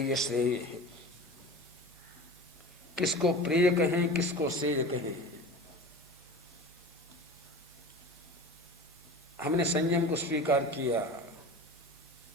श्रेय। किसको प्रेय कहें, किसको श्रेय कहें? हमने संयम को स्वीकार किया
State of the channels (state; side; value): normal; both; correlation 0.35